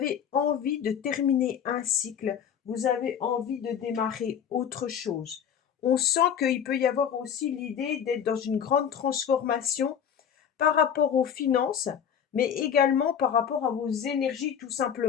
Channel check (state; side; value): quieter; right; 8.3 dB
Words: envie de terminer un cycle, vous avez envie de démarrer autre chose. On sent qu'il peut y avoir aussi l'idée d'être dans une grande transformation par rapport aux finances, mais également par rapport à vos énergies tout